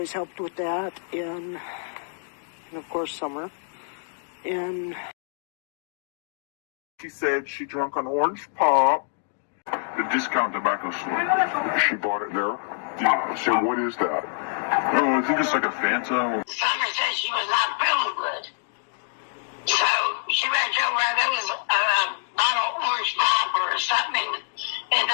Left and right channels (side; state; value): right; silent; digital silence